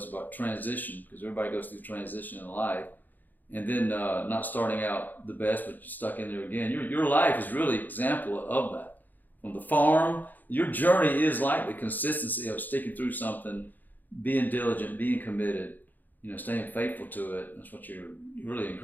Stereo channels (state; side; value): late; right; 0.085 ms